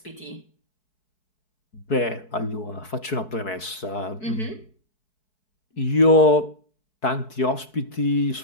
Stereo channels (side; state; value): right; late; 4.6 ms